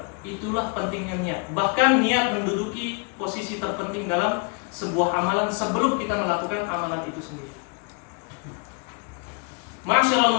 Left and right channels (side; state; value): right; quieter; 34.5 dB